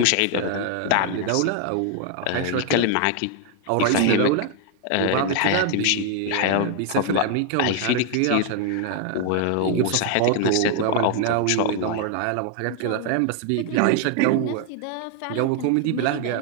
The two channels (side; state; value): both; different; correlation 0.00